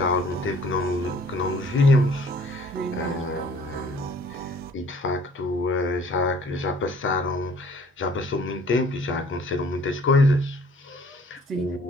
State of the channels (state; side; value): normal; both; correlation 0.55